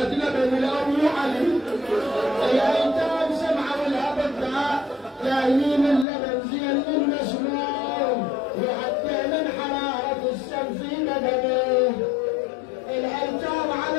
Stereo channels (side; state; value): right; drops out; at 6.1 s